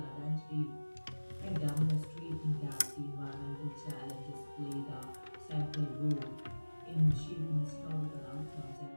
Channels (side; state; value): both; inverted; correlation -1.00